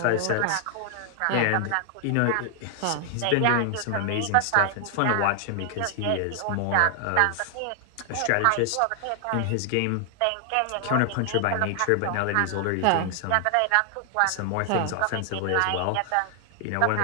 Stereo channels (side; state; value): both; different; correlation 0.00